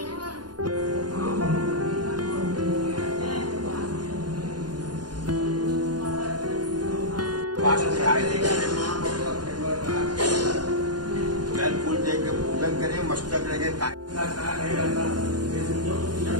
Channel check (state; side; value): late; left; 0.70 ms